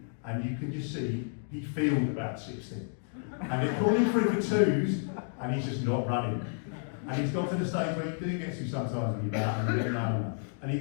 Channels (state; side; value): silent; right; digital silence